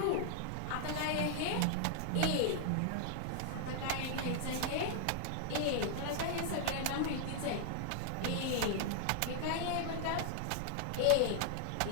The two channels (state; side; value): different; both; correlation -0.01